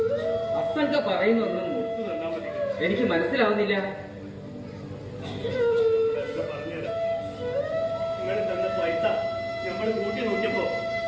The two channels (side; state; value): both; identical; correlation 1.00